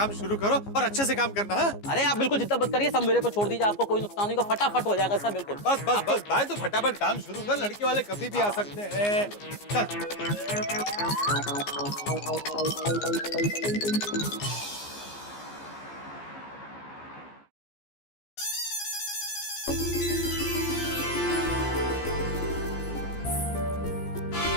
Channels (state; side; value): late; right; 15 ms